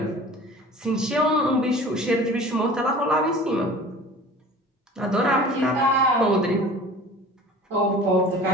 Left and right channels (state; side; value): normal; both; correlation 0.43